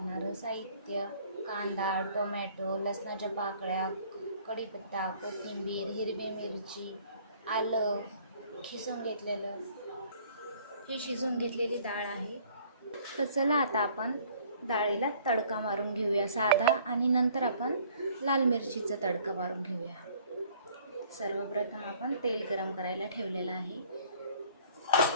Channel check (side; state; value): both; inverted; correlation -0.57